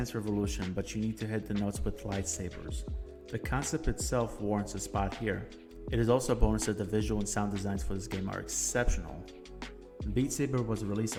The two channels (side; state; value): both; identical; correlation 1.00